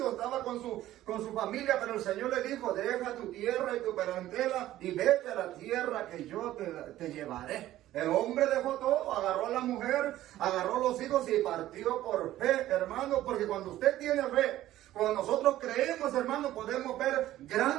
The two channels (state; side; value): quieter; left; 14.2 dB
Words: estaba con su familia, pero el Señor le dijo, deja tu tierra y tu parentela y vete a la tierra que yo te llevaré. El hombre dejó todo, agarró a la mujer, agarró a los hijos y partió por fe, hermano, porque cuando usted tiene fe, cuando nosotros creemos, hermano, podemos ver